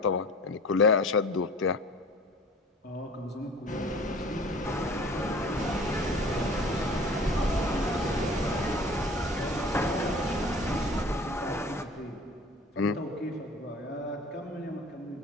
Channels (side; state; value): both; normal; correlation 0.43